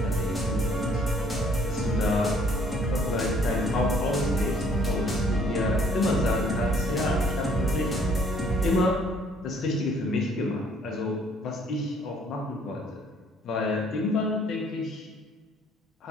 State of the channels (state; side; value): normal; both; correlation 0.61